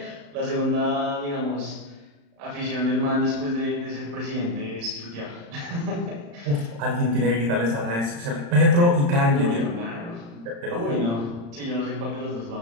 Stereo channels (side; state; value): left; late; 35 ms